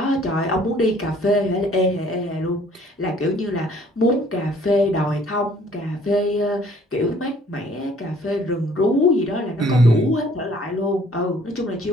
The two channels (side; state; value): both; normal; correlation 0.58